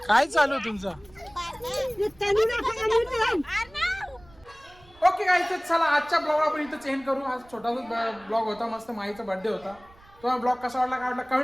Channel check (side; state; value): right; noise; rumble, 26 dB below the sound